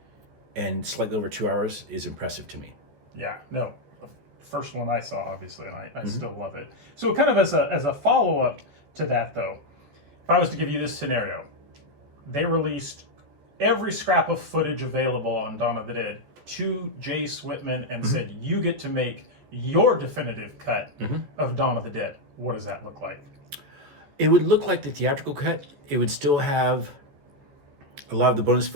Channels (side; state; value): left; late; 14 ms